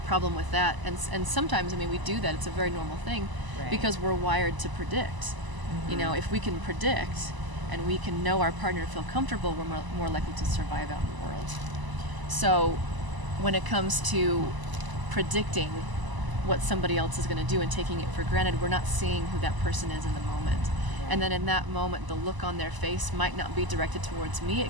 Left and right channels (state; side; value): late; left; 1.0 ms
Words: with that, and sometimes, we do that, it's a very normal thing, because we're wired to predict. If we can predict, and we can know our partner and feel comfortable, we're more likely to survive out in the world. So when it comes to predicting what somebody else is going to do and taking it for granted, we're not seeing who that person is in the moment. And then in that moment, the look on their face might not be directed towards me.